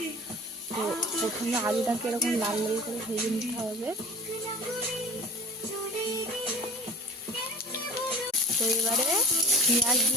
তো প্রথমে আলুটাকে এরকম লাল লাল করে ভেজে নিতে হবে। তো এবারে পেঁয়াজ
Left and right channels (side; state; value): both; normal; correlation 0.40